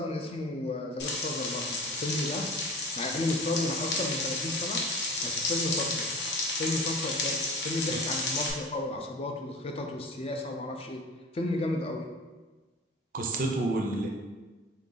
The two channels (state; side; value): normal; both; correlation 0.37